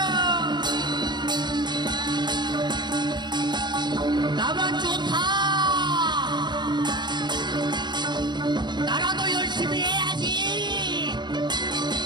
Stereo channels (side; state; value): left; late; 0.21 ms